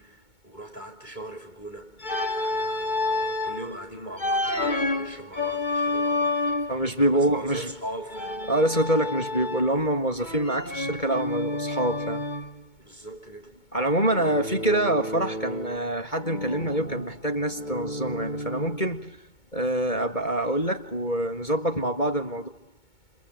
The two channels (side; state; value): right; late; 2.2 ms